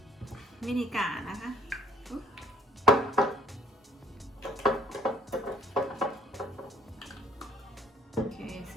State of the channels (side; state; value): both; normal; correlation 0.60